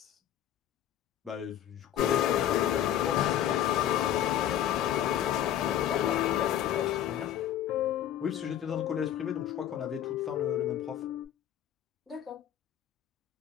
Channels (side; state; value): right; quieter; 11.1 dB